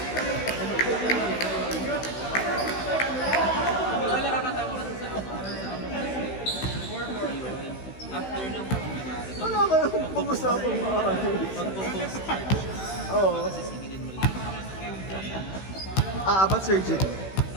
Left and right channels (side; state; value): right; late; 16 ms